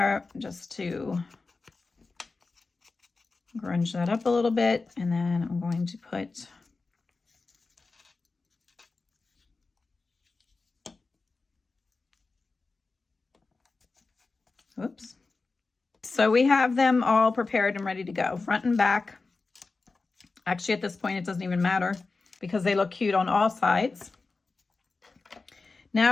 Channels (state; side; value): quieter; right; 3.9 dB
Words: just to grunge that up a little bit, and then I'm going to put whoops. So we have them all prepared and ready to go, front and back. Actually, at this point, it doesn't even matter because they look cute on all sides.